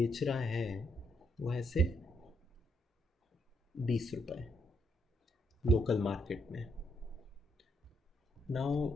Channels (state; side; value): normal; both; correlation 0.75